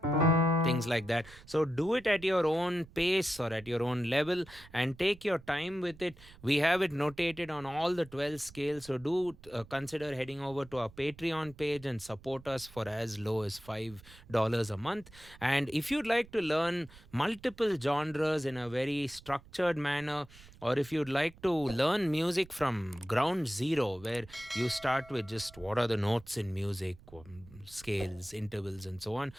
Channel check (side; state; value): right; noise; rumble, 21 dB below the sound